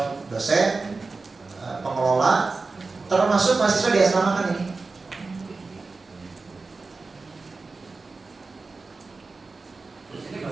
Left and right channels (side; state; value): left; quieter; 3.9 dB